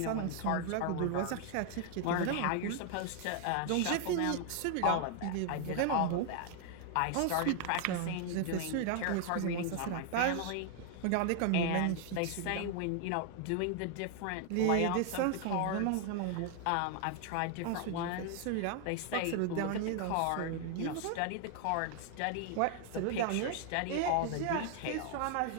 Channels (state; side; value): different; both; correlation 0.00